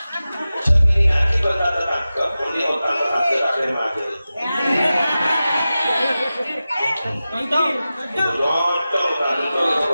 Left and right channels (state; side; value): inverted; both; correlation -0.94